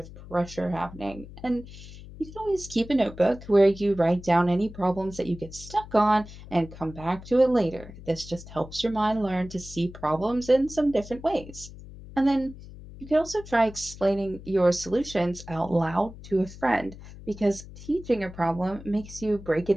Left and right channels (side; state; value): left; noise; hum, 16 dB below the sound